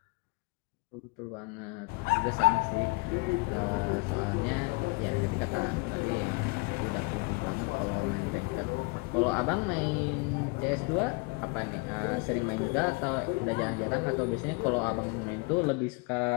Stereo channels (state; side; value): quieter; right; 28.9 dB